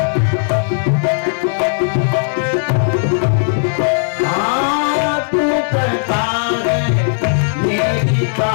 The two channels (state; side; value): silent; right; digital silence